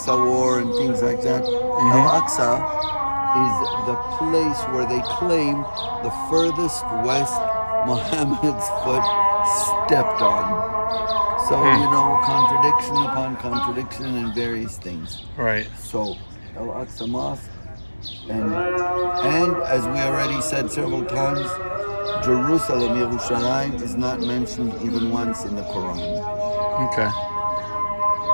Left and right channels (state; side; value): inverted; both; correlation -1.00